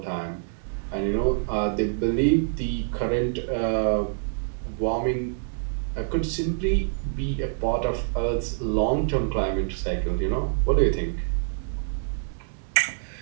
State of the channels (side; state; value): left; silent; digital silence